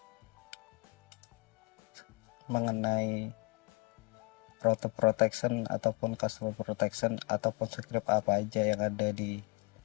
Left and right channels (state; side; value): quieter; right; 27.5 dB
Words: mengenai router protection ataupun customer protection ataupun script apa aja yang ada di